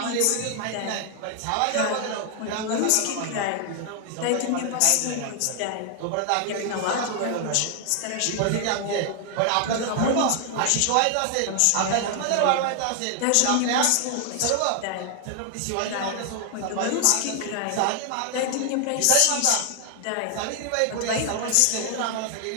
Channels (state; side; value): different; both; correlation 0.00